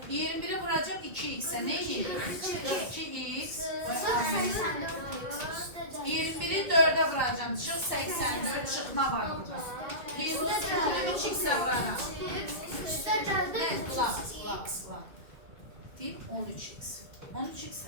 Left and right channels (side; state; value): left; late; 2.1 ms